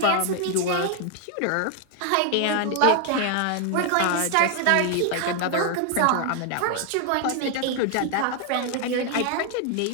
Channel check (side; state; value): both; different; correlation 0.00